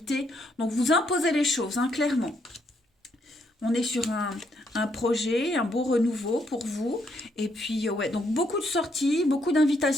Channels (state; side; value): normal; both; correlation 0.74